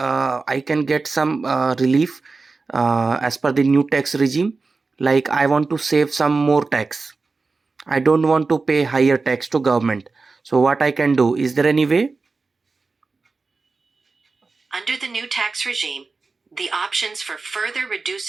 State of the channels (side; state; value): left; quieter; 4.0 dB